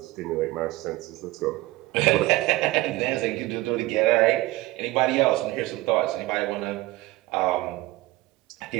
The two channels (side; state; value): left; quieter; 18.9 dB